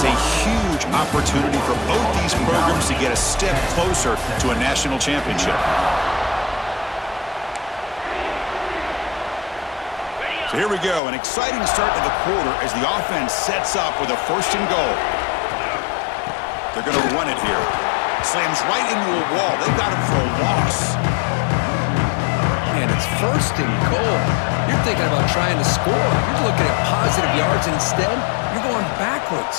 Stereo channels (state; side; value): drops out; right; at 11.0 s